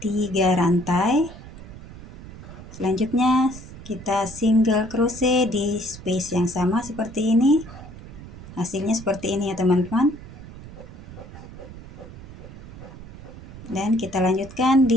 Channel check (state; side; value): noise; right; rumble, 15 dB below the sound